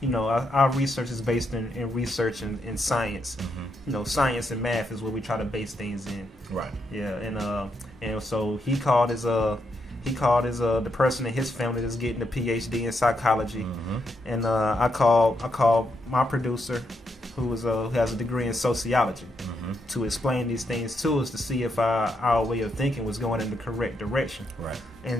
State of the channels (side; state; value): both; normal; correlation 0.80